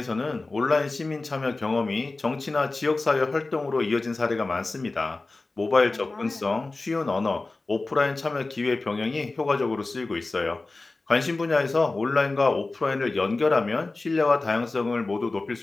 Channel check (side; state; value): right; quieter; 3.3 dB